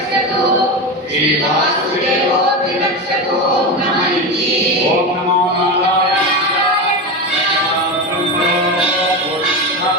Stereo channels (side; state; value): both; normal; correlation 0.20